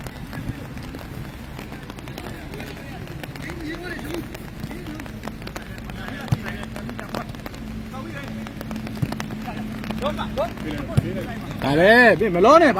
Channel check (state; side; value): identical; both; correlation 1.00